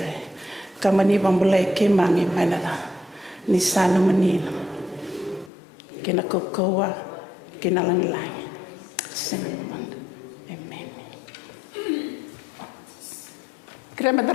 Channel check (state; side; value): drops out; right; at 5.5 s